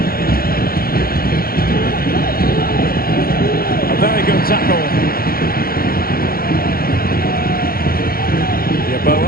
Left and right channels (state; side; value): late; right; 0.43 ms